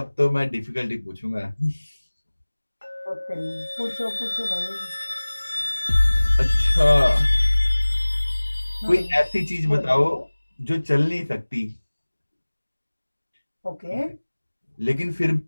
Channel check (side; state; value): both; inverted; correlation -1.00